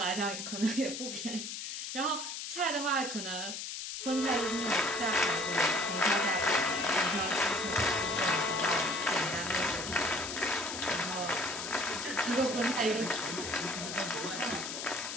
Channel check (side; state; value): left; noise; hiss, 6 dB below the sound